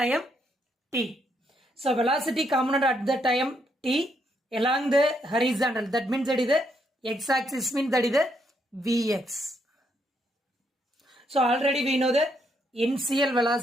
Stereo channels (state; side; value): normal; both; correlation 0.75